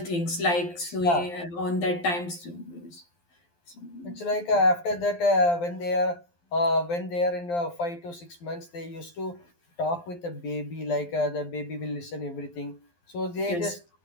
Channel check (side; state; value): right; late; 12 ms